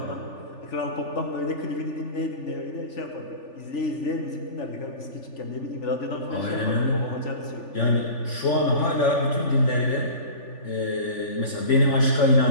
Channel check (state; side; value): late; right; 3.4 ms